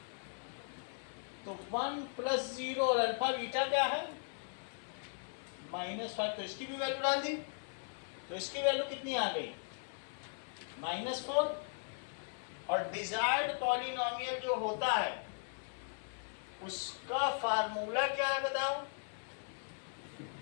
तो 1 प्लस 0 और अल्फा बीटा क्या है, -5, तो इसकी भी वैल्यू डाल दी, तो इसकी वैल्यू कितनी आ गई, -4। और डिजायर्ड पॉलिनोमियल जो होता है उसका फार्मूला क्या है बताओ,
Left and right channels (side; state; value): right; silent; digital silence